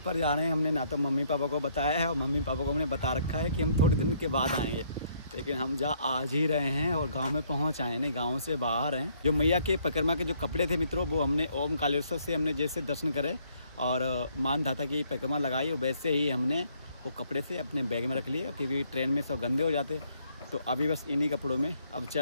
जा रहे हैं। हमने ना तो मम्मी पापा को बताया है और मम्मी पापा को हमने बता रखा है कि हम थोड़े दिन के बाद आएंगे, लेकिन हम आज ही रहे हैं और गांव में पहुंच आए, नहीं गांव से बाहर हैं। जो मैया के परिक्रमा के जो कपड़े थे मित्रों, वो हमने ओम कालेश्वर से हमने जैसे दर्शन करे और मान धाता की परिक्रमा लगाई, वैसे ही हमने वो कपड़े से अपने बैग में रख लिए, क्योंकि ट्रेन में सब गंदे हो जाते। तो अभी बस इन्हीं कपड़ों में अब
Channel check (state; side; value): inverted; both; correlation -0.68